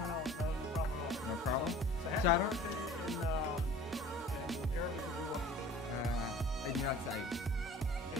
at all. No problem? So happy Shout out. birthday in Arabic would be what? عيد ميلاد سعيد.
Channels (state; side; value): normal; both; correlation 0.46